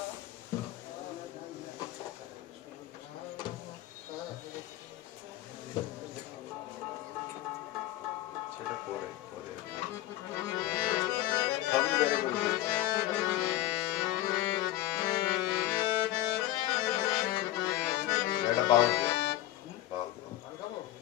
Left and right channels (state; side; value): quieter; right; 14.9 dB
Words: সেটা পরে পরে সবই বেড়ে গেছে। এটা বাউল দিয়ে বাউল